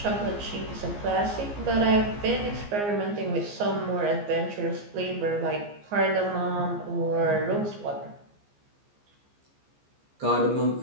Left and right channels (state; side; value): late; left; 15 ms